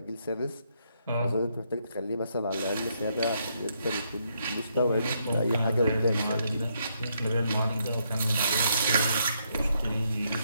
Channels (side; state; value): both; inverted; correlation -0.76